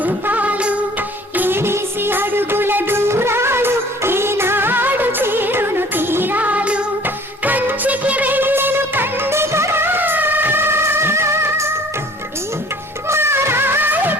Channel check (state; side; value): normal; both; correlation 0.51